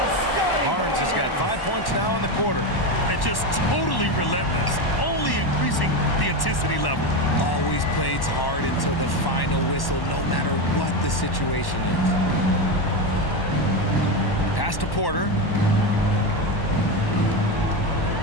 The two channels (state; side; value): late; right; 1.1 ms